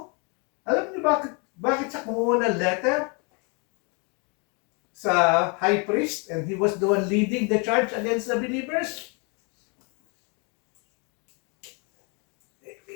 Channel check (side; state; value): right; quieter; 33.9 dB